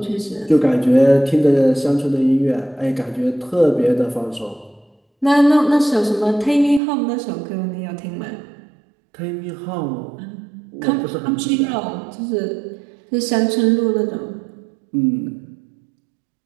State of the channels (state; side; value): drops out; left; at 6.8 s